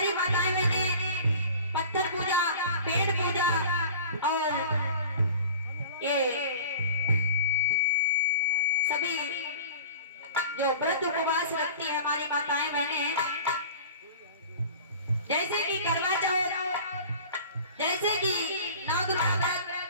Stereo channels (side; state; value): both; inverted; correlation -0.42